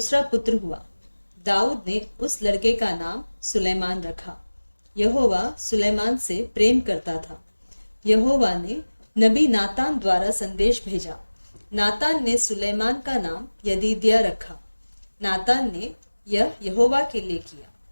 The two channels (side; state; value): both; inverted; correlation -1.00